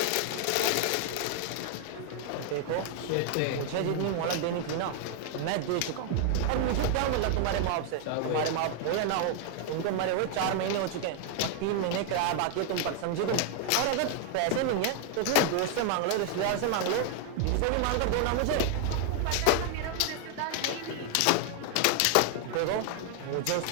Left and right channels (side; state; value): both; different; correlation 0.00